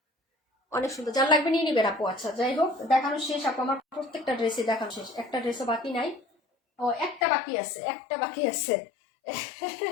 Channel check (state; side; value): drops out; right; at 7.2 s